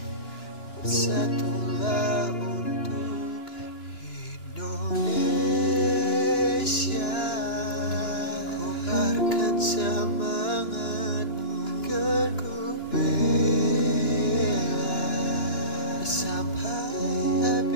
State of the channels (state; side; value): late; right; 2.9 ms